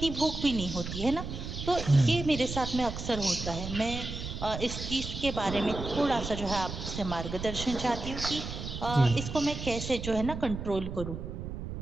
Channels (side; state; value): right; noise; rumble, 7 dB below the sound